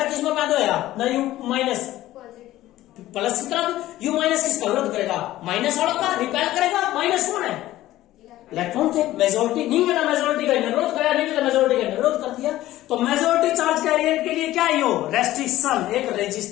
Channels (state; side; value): quieter; right; 15.2 dB